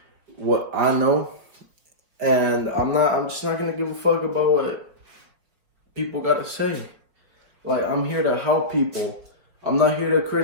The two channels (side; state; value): left; late; 5.0 ms